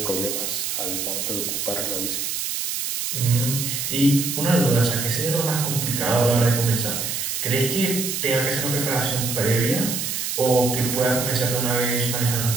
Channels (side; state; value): right; noise; hiss, 2 dB below the sound